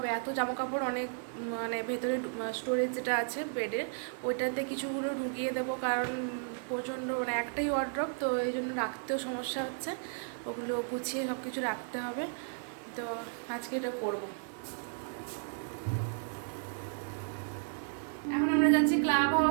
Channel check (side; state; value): left; silent; digital silence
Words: এত জামা কাপড় অনেক, মানে ভেতরে স্টোরেজ যেটা আছে বেডের, ওইটাতে কিছুগুলো ঢুকিয়ে দেবো, কারণ প্রচণ্ড, মানে একটাই ওয়ার্ড্রপ, তো এই জন্য রাখতেও সমস্যা হচ্ছে। ওগুলো গুছিয়ে সব কিছু রাখতে হবে, তো আজকে এটা করবো। এখন আমরা যাচ্ছি ক্লাব